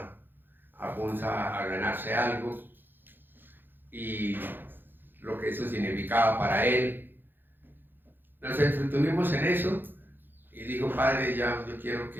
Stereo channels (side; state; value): left; late; 0.096 ms